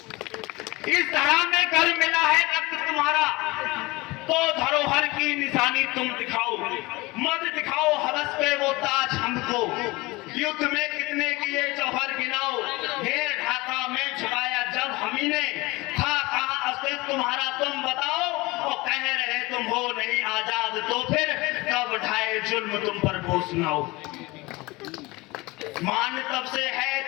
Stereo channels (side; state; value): right; quieter; 22.5 dB